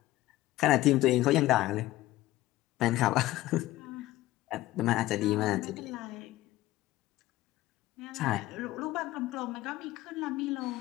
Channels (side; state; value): right; quieter; 16.6 dB